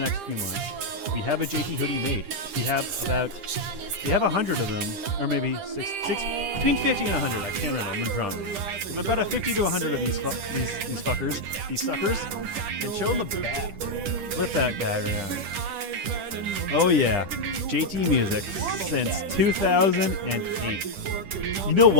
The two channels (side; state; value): left; late; 10 ms